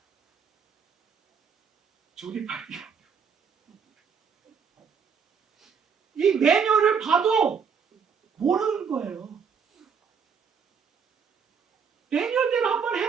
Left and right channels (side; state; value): left; quieter; 6.4 dB